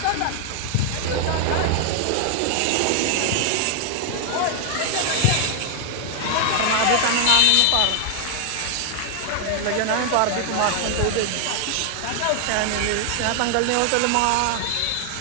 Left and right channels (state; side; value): different; both; correlation 0.00